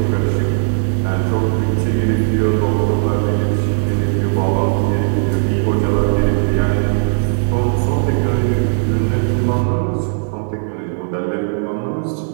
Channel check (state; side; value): silent; left; digital silence